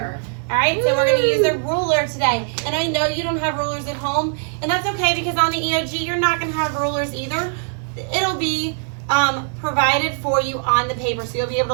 All right, so we're gonna use a ruler today. And I know you don't have rulers at home, and that's okay because on the EOG, you're not gonna have rulers either. It'll be provided for you on the paper. So you'll be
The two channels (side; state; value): left; silent; 59 dB below the other